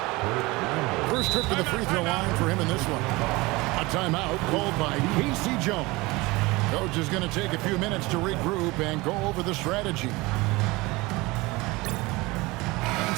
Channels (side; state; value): left; quieter; 22.6 dB